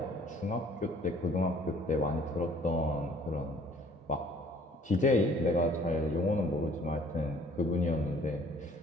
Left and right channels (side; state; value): both; normal; correlation 0.56